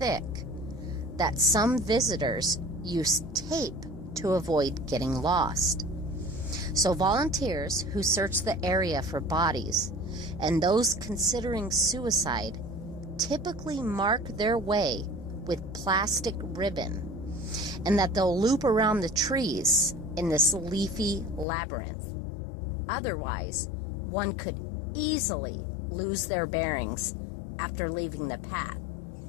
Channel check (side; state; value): right; drops out; at 21.5 s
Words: that some visitors use tape to avoid getting lost. So volunteers who search the area for bodies and those considering suicide typically mark their way with plastic ribbon, and that they'll loop around the trees in this leafy labyrinth. Otherwise, one could easily lose their bearings after leaving the path